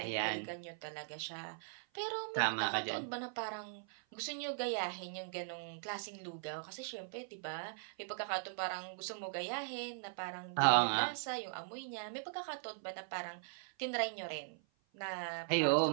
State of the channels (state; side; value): silent; left; 51 dB below the other